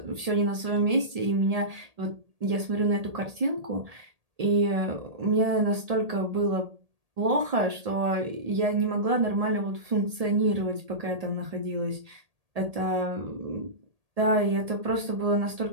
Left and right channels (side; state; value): left; late; 1.8 ms